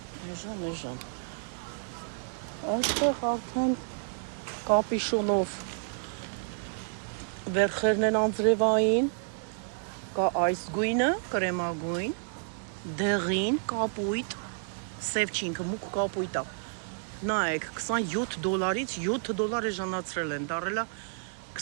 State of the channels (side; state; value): left; silent; digital silence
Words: Էժան Այստեղ արդեն կապիշոնով վերխերն են անձրևային կա այս գույնը, կրեմագույն դեղին, կապույտ սև չինքը, մուկ կապույտ է նայեք, $27-ից $7 էժանացրել են, դարել է